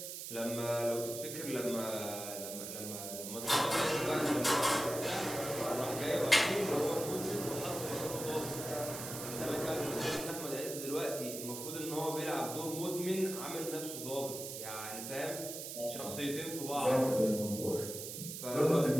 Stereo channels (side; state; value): right; noise; hiss, 7 dB below the sound